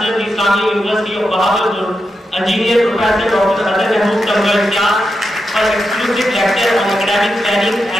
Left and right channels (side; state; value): both; normal; correlation 0.87